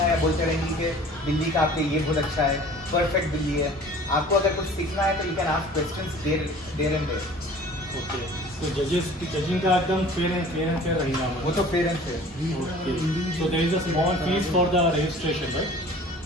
या बोलते रहेंगे कि बिल्ली का आपके ये बहुत अच्छा है, परफेक्ट बिल्ली है। आपको अगर कुछ सीखना है तो you can ask questions there and there. Okay, तो जजिंग का एकदम फेयर एंड फेयर रहेगा, वो तो पेरेंट्स है। Okay, so there is a small fees for the registration, right?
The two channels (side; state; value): both; normal; correlation 0.47